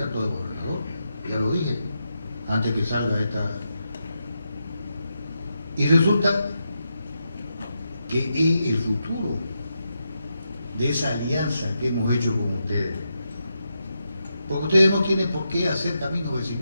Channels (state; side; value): inverted; both; correlation -0.85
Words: de gobernador, ya lo dije, antes que salga esta. Y resulta que es el futuro de esa alianza que hemos hecho con ustedes. Porque ustedes no tienen por qué hacer caminos